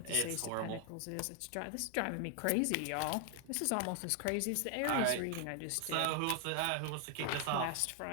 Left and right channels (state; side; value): different; both; correlation 0.00